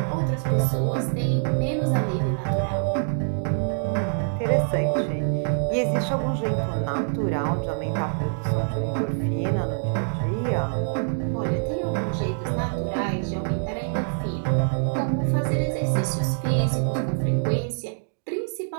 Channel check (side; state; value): left; silent; digital silence